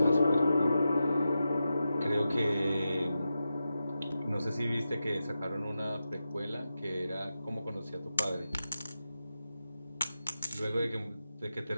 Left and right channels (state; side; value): inverted; both; correlation -0.91